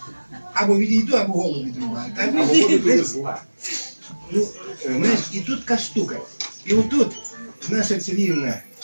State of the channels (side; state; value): both; inverted; correlation -1.00